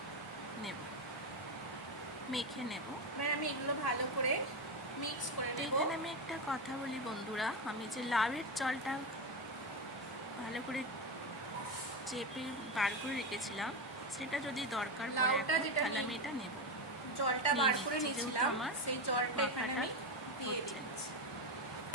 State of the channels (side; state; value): both; normal; correlation 0.14